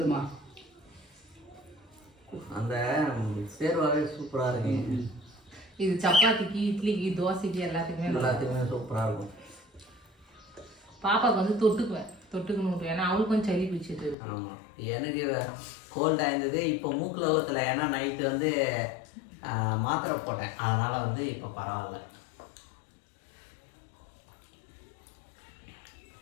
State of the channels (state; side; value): drops out; right; at 14.2 s